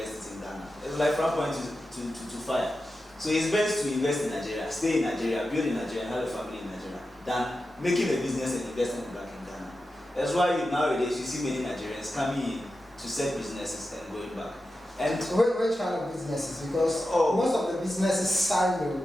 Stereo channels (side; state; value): both; normal; correlation 0.91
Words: it in Ghana. It's like from point to fire. So it's best to invest in Nigeria, stay in Nigeria, build in Nigeria, and have a family in Nigeria, than making a business and investing it back in Ghana. That's why nowadays you see many Nigerians coming in to set businesses and going back. And which kind of businesses? Because most of the businesses